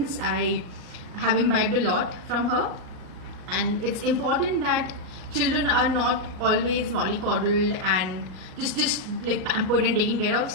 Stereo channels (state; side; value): late; left; 38 ms